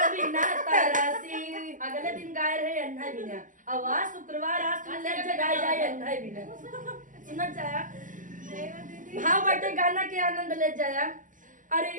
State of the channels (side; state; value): left; late; 0.38 ms